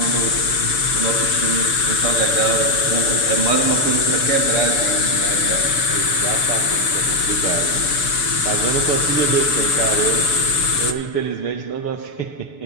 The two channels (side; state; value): right; late; 6.9 ms